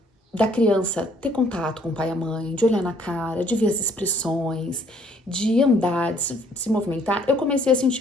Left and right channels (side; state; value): both; normal; correlation 0.63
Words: da criança ter contato com o pai e a mãe, de olhar na cara, de ver as expressões, de andar, de se movimentar, eu comecei a